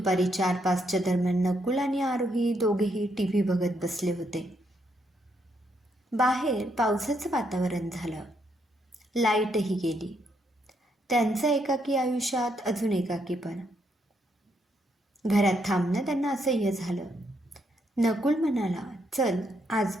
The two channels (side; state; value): both; normal; correlation 0.76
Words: 4-5च्या दरम्यान नकुल आणि आरोही दोघेही टीव्ही बघत बसले होते. बाहेर पावसाचं वातावरण झालं. लाईटही गेली. त्यांचं एकाकी आयुष्यात अजून एकाकीपण. घरात थांबणं त्यांना असह्य झालं. नकुल म्हणाला, चल आज